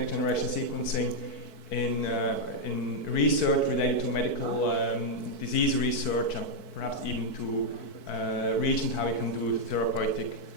generation sequencing in research related to medical disease research, and perhaps even to regions how you can do therapeutic,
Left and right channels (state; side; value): late; right; 4.6 ms